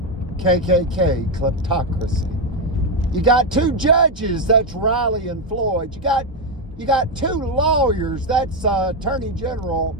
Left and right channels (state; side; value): normal; both; correlation 0.06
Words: KKK kleptocracy. You got two judges, that's Riley and Floyd. You got two lawyers, that's Attorney General